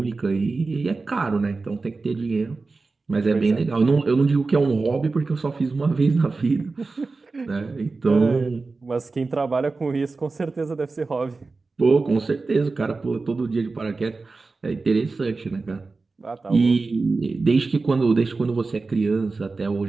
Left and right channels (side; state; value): left; quieter; 3.9 dB